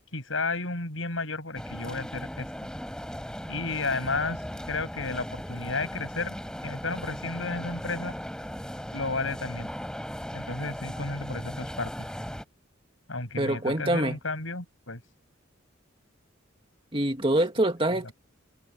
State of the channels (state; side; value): normal; both; correlation 0.37